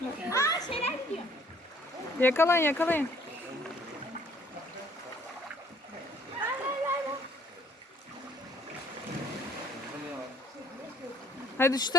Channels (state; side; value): normal; both; correlation 0.58